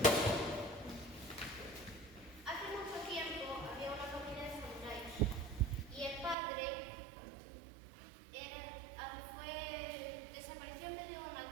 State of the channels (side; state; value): left; drops out; at 6.4 s